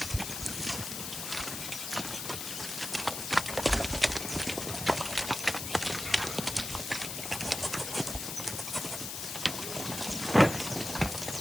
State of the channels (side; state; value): left; noise; hiss, 5 dB below the sound